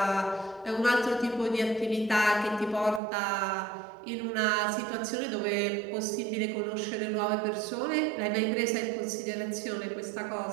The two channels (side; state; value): left; drops out; at 3.0 s